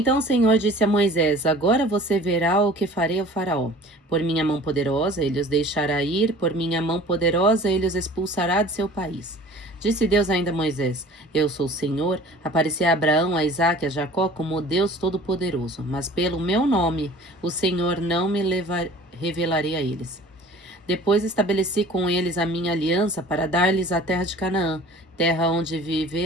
o Senhor disse a Moisés: Agora você verá o que farei ao faraó. Por minha mão poderosa ele os deixará ir, por minha mão poderosa ele os expulsará de seu país. Disse Deus ainda a Moisés: Eu sou o Senhor, apareci a Abraão, a Isaque e a Jacó como Deus Todo-Poderoso, mas pelo meu nome o Senhor não me revelarei a eles. Depois estabeleci com eles a minha aliança para dar-lhes a terra de Canaã, terra onde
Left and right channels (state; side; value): normal; both; correlation 0.46